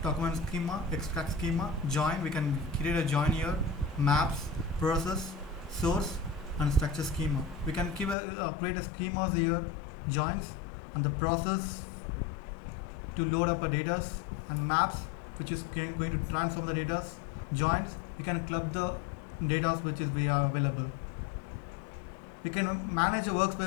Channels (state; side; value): drops out; right; at 8.2 s